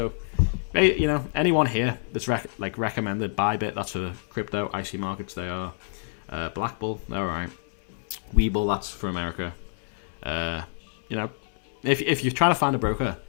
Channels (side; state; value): right; silent; 60 dB below the other